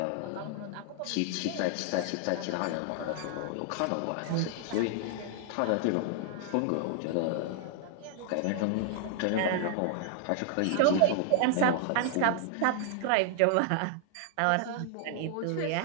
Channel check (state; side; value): different; both; correlation 0.00